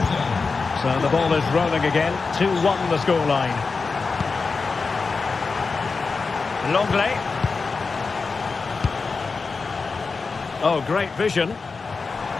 So the ball is rolling again. 2-1 the scoreline. Longley. Oh, great vision.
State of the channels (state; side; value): quieter; right; 4.5 dB